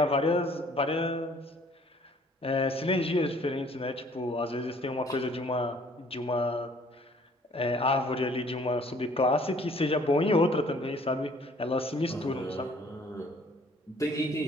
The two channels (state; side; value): normal; both; correlation 0.57